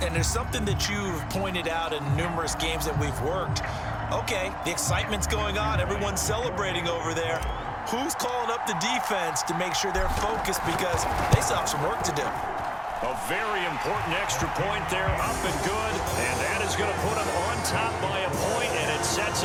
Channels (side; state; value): both; identical; correlation 1.00